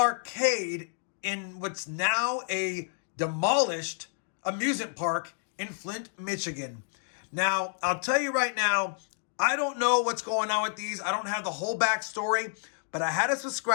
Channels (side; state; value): right; silent; digital silence